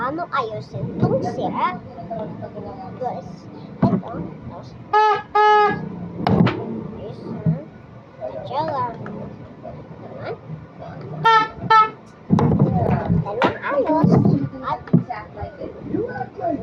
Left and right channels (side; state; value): both; identical; correlation 1.00